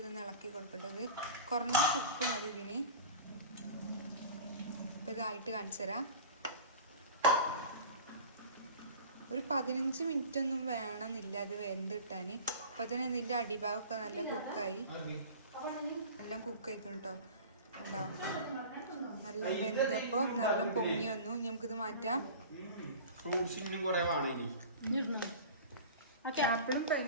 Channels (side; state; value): both; inverted; correlation -0.38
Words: ഇളക്കി കൊടുക്കേണ്ടത്. കുറഞ്ഞ ഉപ്പ് മതി ഇതിന്. ഇപ്പം ഇതായിട്ട് കാണിച്ചു തരാം. ഒരു 15 മിനിറ്റ് ഒന്നും വേണമെന്നില്ല അത് വെന്ത് കിട്ടാൻ. അപ്പം തന്നെ ഇതിൻ്റെ അടിഭാഗമൊക്കെ നല്ല കുക്കായി, നല്ല കുക്കായിക്കണം കേട്ടോ. ഉണ്ടോ, നല്ല വെന്തപ്പോൾ നല്ല പൊങ്ങി വന്നു. നമുക്കിത് മാറ്റാം. ആപ്പിളും